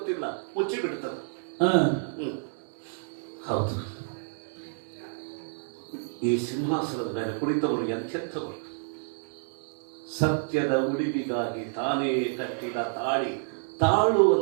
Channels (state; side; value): silent; left; digital silence